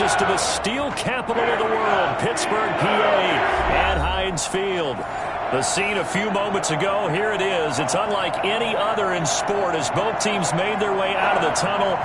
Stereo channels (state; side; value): identical; both; correlation 1.00